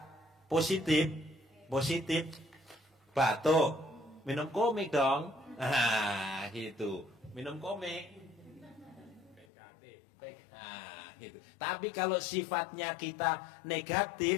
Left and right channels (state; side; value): drops out; right; at 9.5 s